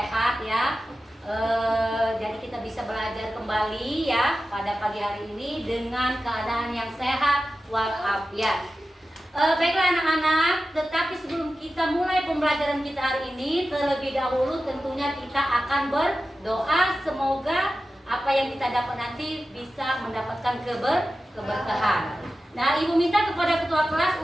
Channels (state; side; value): normal; both; correlation 0.94